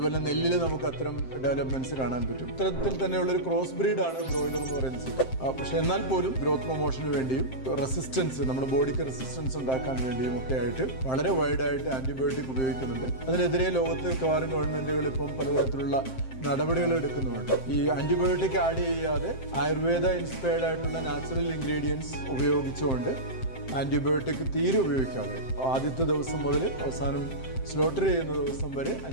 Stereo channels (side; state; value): right; late; 7.7 ms